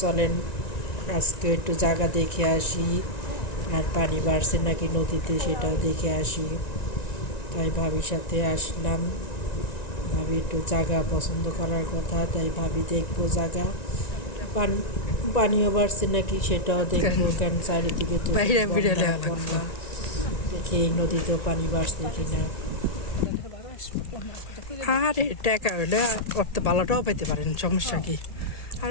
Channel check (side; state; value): right; late; 1.9 ms